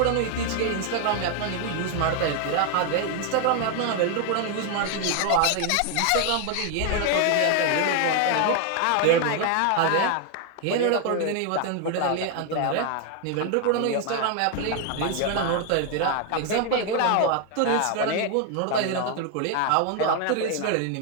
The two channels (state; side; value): different; both; correlation 0.00